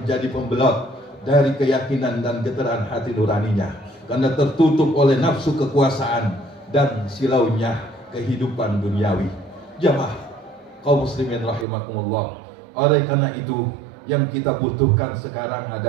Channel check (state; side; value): drops out; left; at 11.7 s